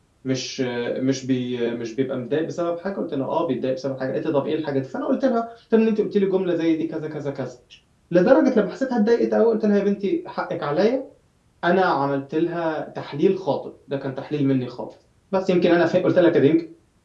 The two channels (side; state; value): both; identical; correlation 1.00